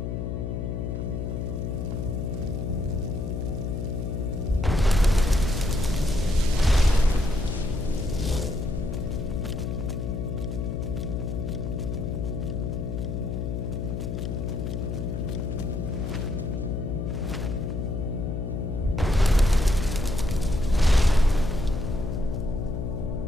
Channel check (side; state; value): left; noise; hum, 3 dB below the sound